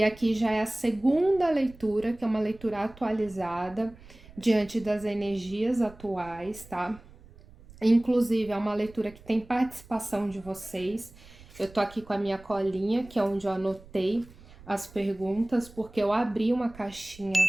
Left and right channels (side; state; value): right; noise; rumble, 22 dB below the sound